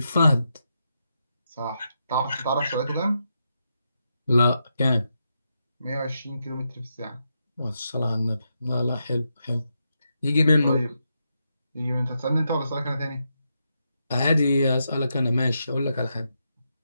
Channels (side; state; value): both; inverted; correlation -0.84